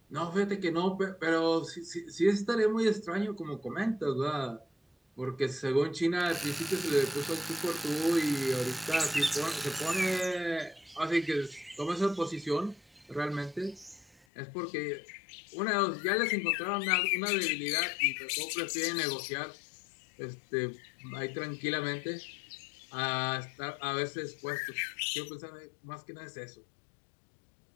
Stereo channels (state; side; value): drops out; right; at 14.2 s